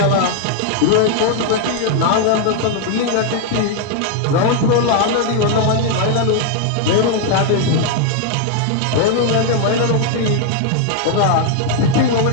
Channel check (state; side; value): different; both; correlation 0.00